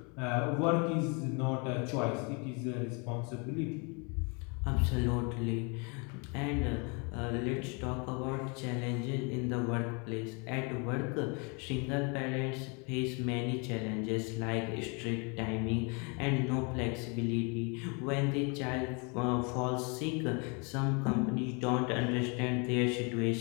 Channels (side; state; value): right; quieter; 33.2 dB